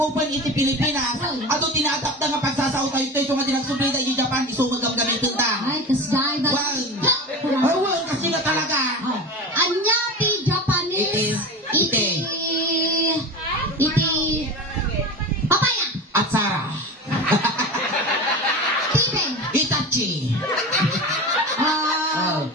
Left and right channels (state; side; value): normal; both; correlation 0.29